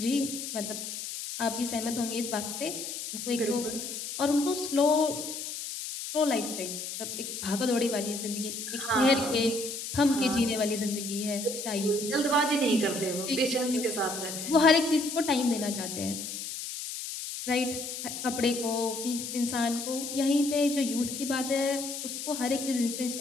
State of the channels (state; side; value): noise; left; hiss, 6 dB below the sound